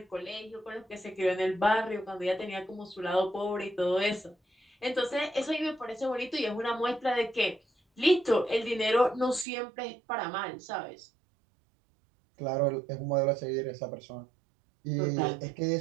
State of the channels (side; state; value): left; drops out; at 9.5 s